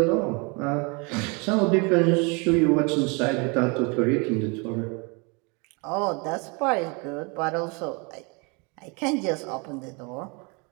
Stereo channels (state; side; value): quieter; left; 30.9 dB